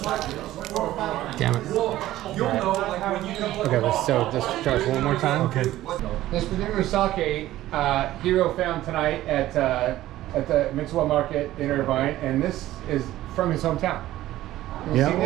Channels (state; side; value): quieter; left; 14.8 dB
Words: Damn it. Okay, let's just try this one more time. Okay. This particular sake, Hiro found tonight at the Mitsuwa Market in Irvine, and this is from his hometown. You've Yeah. seen